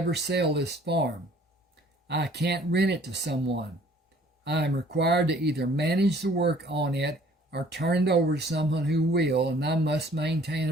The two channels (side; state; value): both; normal; correlation 0.56